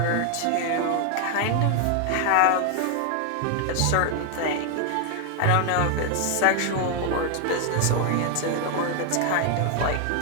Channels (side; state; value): both; different; correlation 0.00